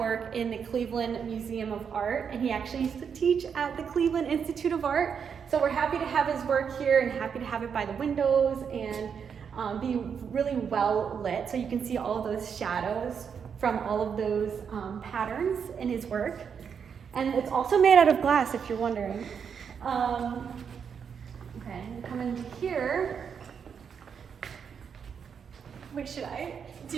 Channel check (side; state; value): left; quieter; 6.9 dB